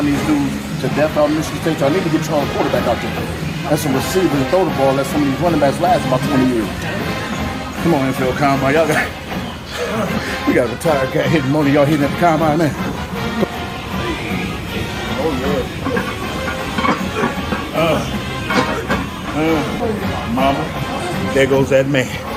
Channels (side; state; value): both; identical; correlation 1.00